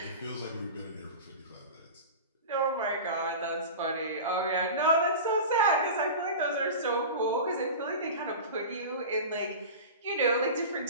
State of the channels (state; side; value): inverted; both; correlation -0.31